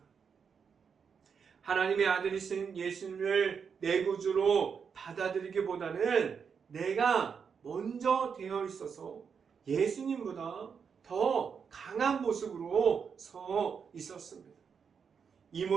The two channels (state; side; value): quieter; left; 6.4 dB